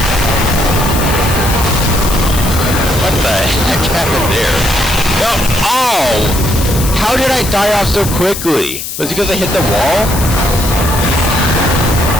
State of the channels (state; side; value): noise; left; hiss, 7 dB below the sound